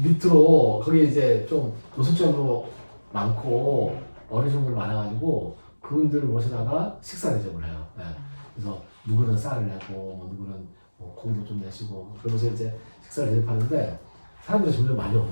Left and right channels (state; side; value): inverted; both; correlation -1.00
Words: 밑으로 거기 이제 좀 노숙자로 많고 어르신들 많아가지고 그분들을 모시다가 식사 대접을 해요. 네. 그래서 누구는 쌀을 내고 누구는 고기도 좀 내시고 그러면서 이제 식사를 대접하는데 사람들이 점점 많이